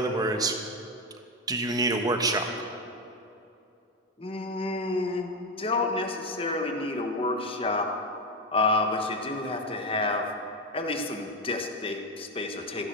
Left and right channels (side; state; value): both; normal; correlation 0.12